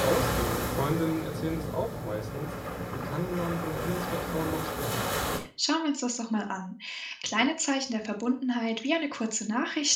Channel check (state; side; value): identical; both; correlation 1.00